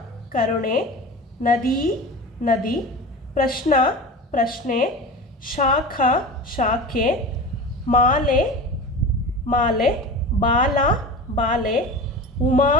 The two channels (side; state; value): both; normal; correlation 0.31